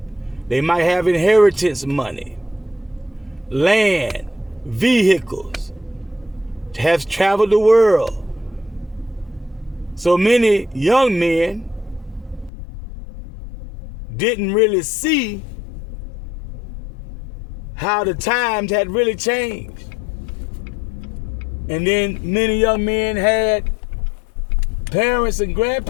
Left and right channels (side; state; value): right; drops out; at 12.5 s